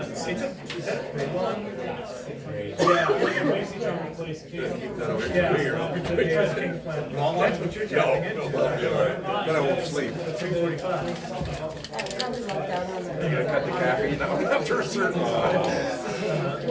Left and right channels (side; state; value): both; identical; correlation 1.00